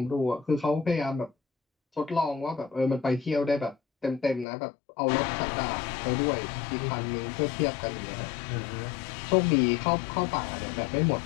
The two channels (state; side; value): drops out; right; at 4.5 s